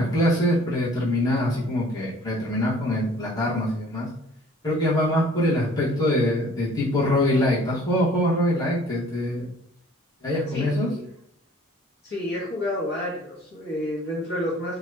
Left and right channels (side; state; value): both; normal; correlation 0.53